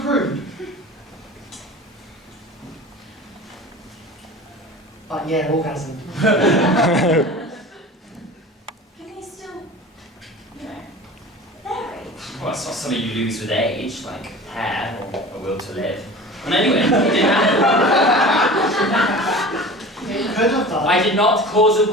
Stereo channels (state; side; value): normal; both; correlation 0.37